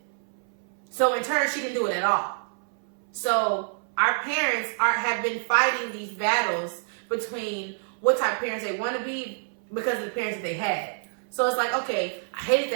So in turn, she didn't do it at all. So our parents have been fighting these battles between what type of parents they want to be because of the parents that they had. So it's like, okay, I hated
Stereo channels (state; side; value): silent; left; 60 dB below the other